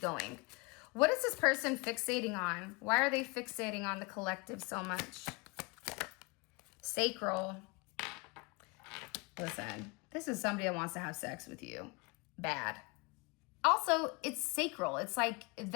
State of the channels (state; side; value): quieter; right; 28.4 dB